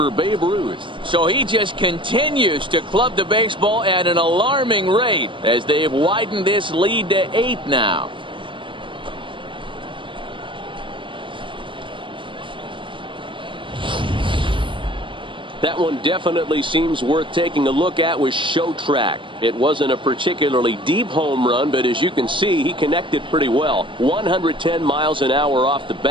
Babe Ruth. So he just continues to club the baseball at an alarming rate as they've widened this lead to 8 now. That one definitely seems worth taking a look at with Show Track. It wasn't a particularly deep home run, but as you can see, he connected pretty well. 110 miles an hour off the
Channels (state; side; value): late; left; 0.24 ms